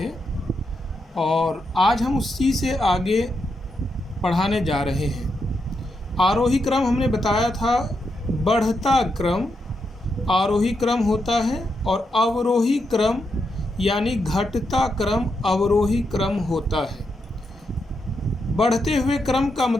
और आज हम उसी से आगे पढ़ाने जा रहे हैं। आरोही क्रम हमने बताया था बढ़ता क्रम आरोही क्रम होता है और अवरोही क्रम यानी घटता क्रम अवरोही क्रम होता है। बढ़ते हुए क्रम का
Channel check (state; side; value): normal; both; correlation 0.83